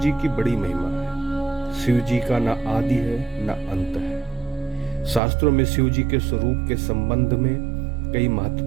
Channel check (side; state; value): left; drops out; at 5.2 s